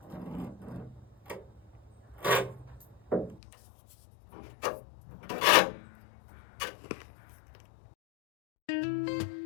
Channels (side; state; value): right; drops out; at 3.4 s